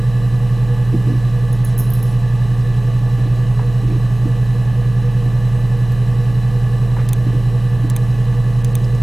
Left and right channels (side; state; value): right; noise; hum, 16 dB below the sound